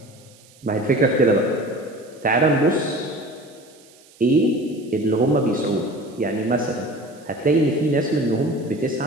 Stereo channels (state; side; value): noise; right; hiss, 27 dB below the sound